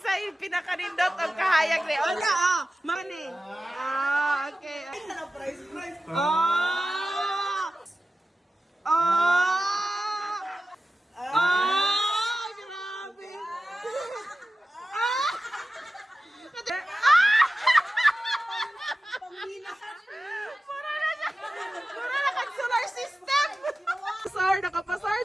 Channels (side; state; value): both; normal; correlation 0.94